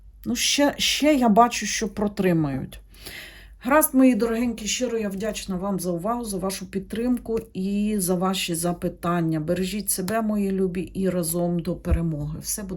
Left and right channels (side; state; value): both; identical; correlation 1.00